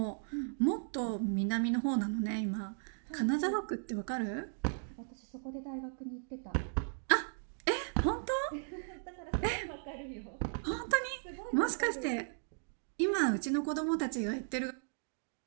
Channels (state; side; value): silent; left; digital silence